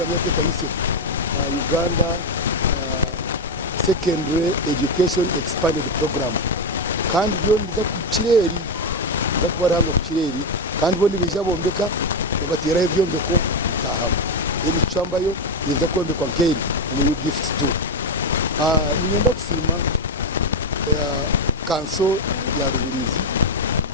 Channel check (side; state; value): both; normal; correlation 0.09